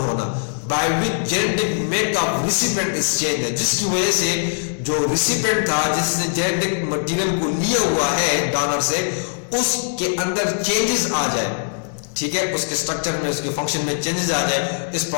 होना, by which genetic makeup recipient is change, जिसकी वजह से जो रिसिपिएंट था जिसने जेनेटिक मटेरियल को लिया हुआ है डोनर से, उसके अंदर चेंजेस आ जाए, ठीक है, उसके स्ट्रक्चर में, उसके फंक्शन में चेंजेस आ जाए, इस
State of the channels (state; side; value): silent; right; 65 dB below the other